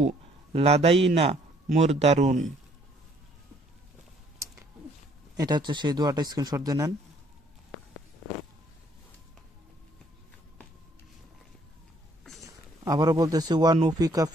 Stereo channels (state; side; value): normal; both; correlation 0.63